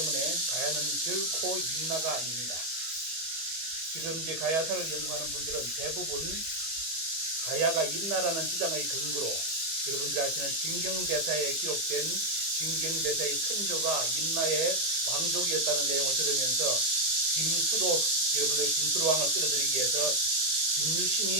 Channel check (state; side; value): late; left; 25 ms